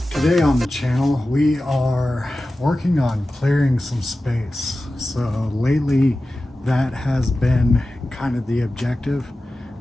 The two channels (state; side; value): normal; both; correlation 0.95